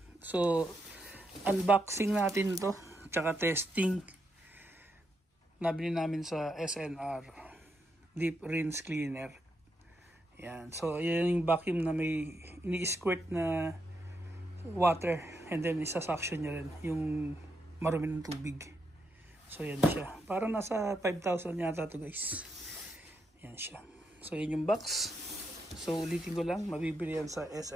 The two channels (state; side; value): normal; both; correlation 0.81